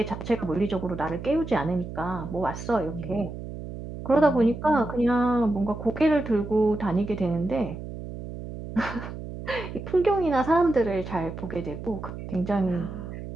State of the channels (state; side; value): noise; right; hum, 10 dB below the sound